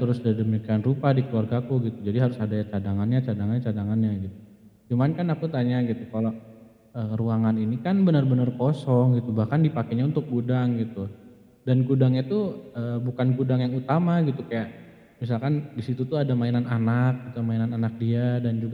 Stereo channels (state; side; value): identical; both; correlation 1.00